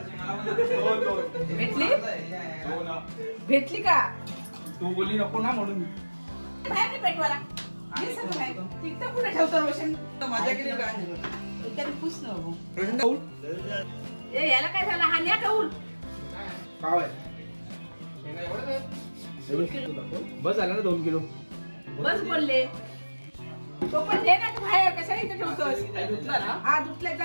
भेटली? भेटली का? तू बोलली नको ना म्हणून. बाहेर नाही पेटवाला. तिथं पुढे ठेवतो रोशन. माझ्या केली काय? एखादी पुस न बघू. रोशन कौल? ए याला काय झालं? हा न्या कौल. पाव आहे. बस झालं ना 2 किलो. बस बोलले. तो पण दे ना तू बाहेर. कशाला इथे ठेवतोस? हा दुसऱ्या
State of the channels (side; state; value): both; inverted; correlation -1.00